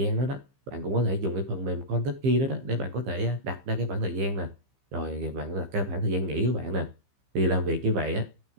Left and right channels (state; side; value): late; left; 15 ms